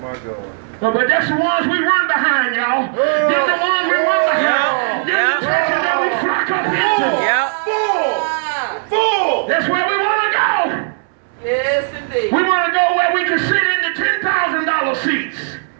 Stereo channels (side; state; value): left; silent; 68 dB below the other